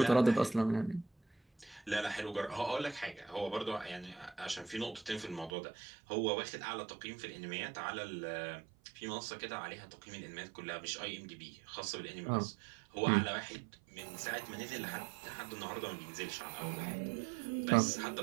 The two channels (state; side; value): drops out; left; at 5.5 s